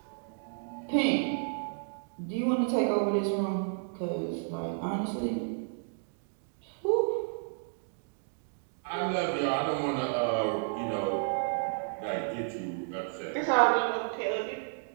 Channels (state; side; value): silent; left; digital silence